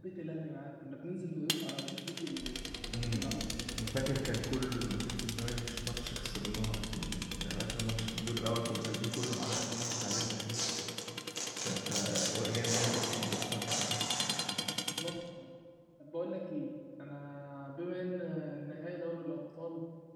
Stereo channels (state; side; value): identical; both; correlation 1.00